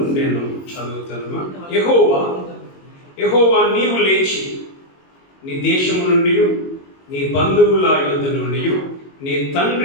నేను చదువుతాను. యెహోవా నీవు లేచి నీ దేశము నుండి, నీ బంధువుల యొద్ద నుండి, నీ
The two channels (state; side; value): late; right; 22 ms